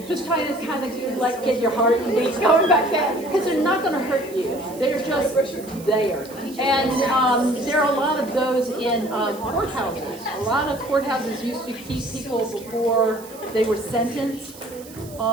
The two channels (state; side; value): noise; right; hiss, 19 dB below the sound